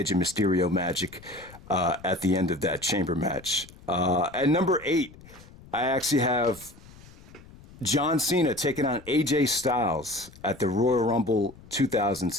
and Mysterio magic at the end of that chamber match. At number 8, I actually have John Cena taking on AJ Styles at the Royal Rumble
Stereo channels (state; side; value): noise; left; rumble, 21 dB below the sound